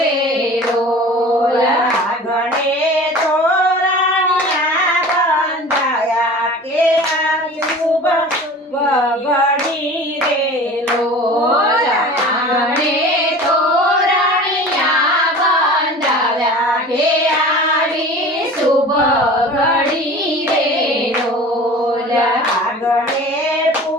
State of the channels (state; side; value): normal; both; correlation 0.40